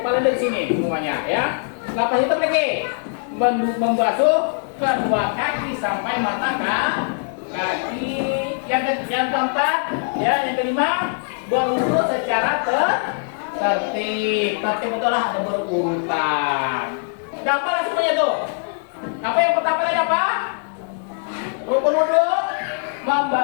dari sini semuanya ya. Lepas itu lagi membasuh kedua kaki sampai mata kaki. Yang keempat ya, yang kelima berwudu secara tertib betul lah, ada berurutan. Gampang semuanya tuh. Apa yang pertama tadi apa? Rukun wudu.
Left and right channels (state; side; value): silent; right; digital silence